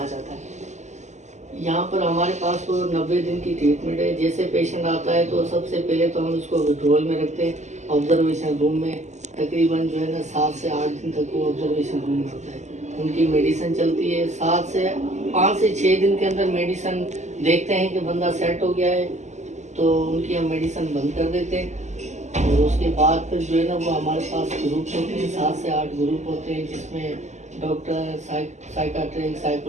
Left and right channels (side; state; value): left; late; 0.34 ms